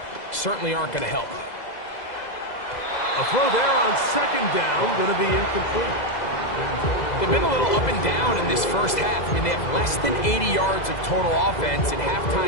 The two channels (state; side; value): late; right; 2.0 ms